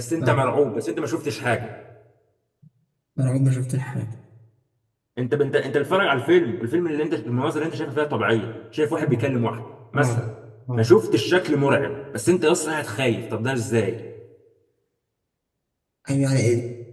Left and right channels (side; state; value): both; identical; correlation 1.00